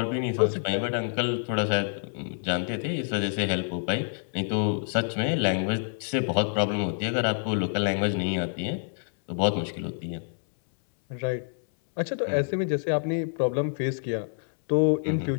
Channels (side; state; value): right; silent; 60 dB below the other